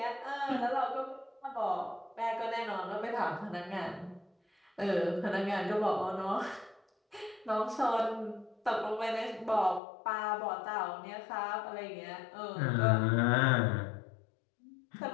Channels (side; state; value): right; drops out; at 9.8 s